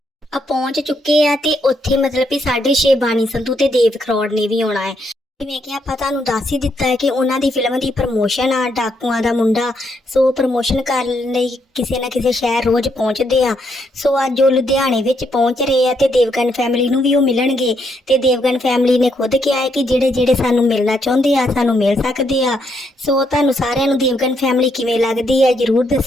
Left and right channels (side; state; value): both; normal; correlation 0.76